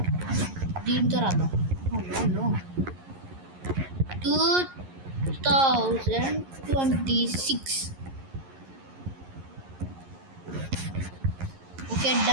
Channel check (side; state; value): left; late; 11 ms